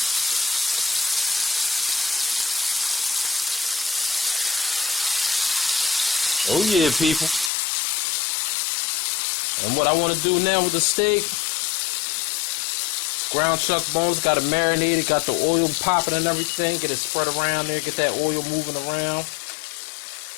Oh yeah, people. And what I want to do now with the steak, ground chuck bones, got it marinated, got the oil popping and everything. Get it spread around there, get that oil moving around.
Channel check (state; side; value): drops out; right; at 7.5 s